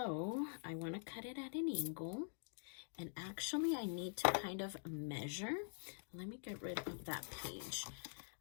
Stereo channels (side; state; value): right; silent; digital silence